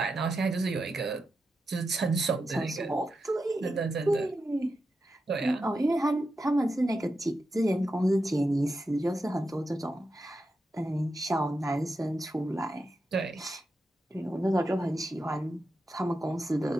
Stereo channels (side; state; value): both; normal; correlation 0.88